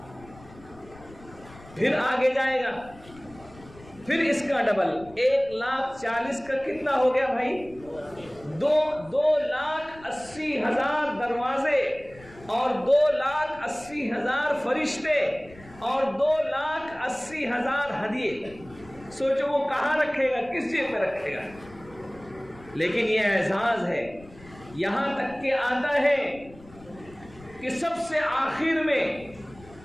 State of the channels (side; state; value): left; noise; rumble, 22 dB below the sound